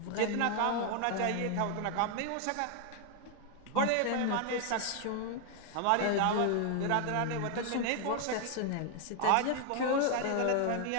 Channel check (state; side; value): different; both; correlation 0.00